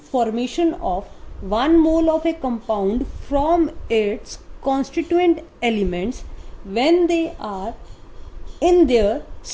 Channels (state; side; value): identical; both; correlation 1.00